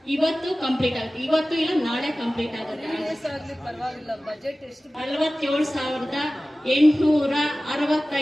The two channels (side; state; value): both; normal; correlation 0.97